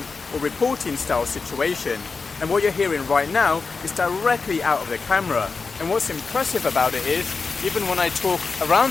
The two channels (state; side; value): quieter; right; 4.6 dB